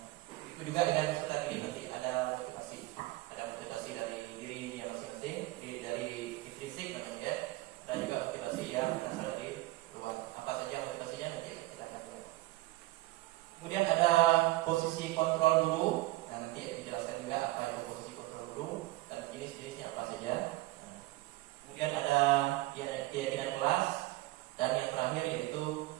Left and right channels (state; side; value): quieter; left; 18.9 dB